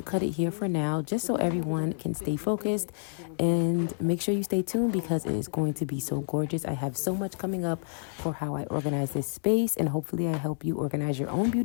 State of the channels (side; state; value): right; silent; 59 dB below the other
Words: cut it here for now just so everyone can stay focused, and make sure you stay tuned because it is going to be so gorgeous. I have so much coming up for how I organize this space, and hopefully I help you organize your own